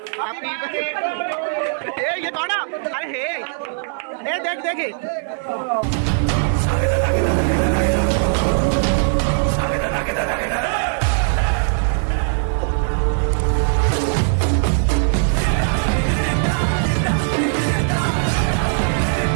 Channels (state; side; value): silent; left; digital silence